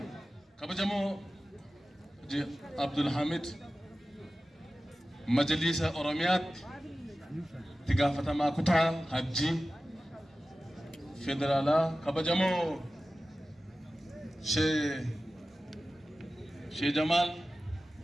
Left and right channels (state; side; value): normal; both; correlation 0.95